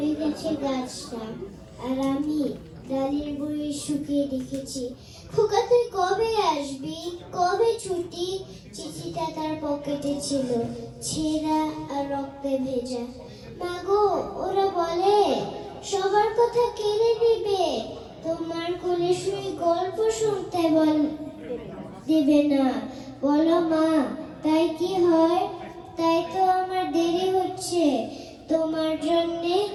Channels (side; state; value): both; identical; correlation 1.00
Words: গেছে গাছটা, আর আমি ডালের বড়ি শুকিয়ে রেখেছি। খোকা তুই কবে আসবি, কবে ছুটি? চিঠিটা তার পকেটে ছিল, ছেঁড়া আর রক্তে ভেজা। মাগো, ওরা বলে সবার কথা কেড়ে নেবে, তোমার কোলে শুয়ে গল্প শুনতে দেবে না। বলো মা, তাই কি হয়? তাই তো আমার দেরি হচ্ছে তোমার জন্যে